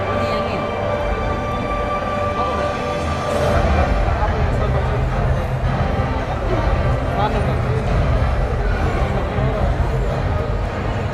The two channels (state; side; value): identical; both; correlation 1.00